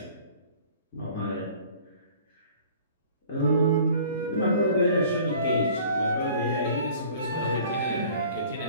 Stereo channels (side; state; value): both; inverted; correlation -0.50